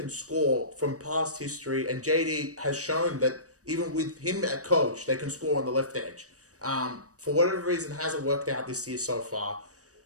score from past history. And JD has shown that even with him at coach, they can score on the left edge. For whatever reason, hasn't worked out this year so far.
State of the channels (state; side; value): late; left; 0.66 ms